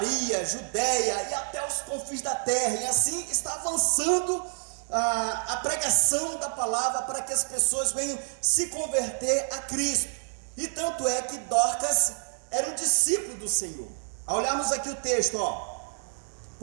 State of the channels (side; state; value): left; silent; digital silence